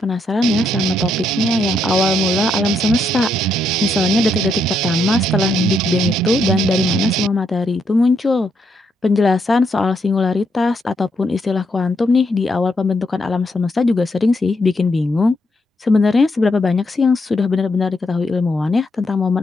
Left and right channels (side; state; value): both; normal; correlation 0.77